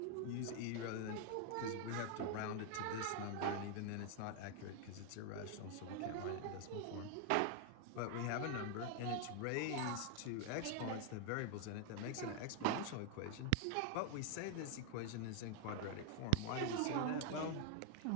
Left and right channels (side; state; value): both; different; correlation 0.01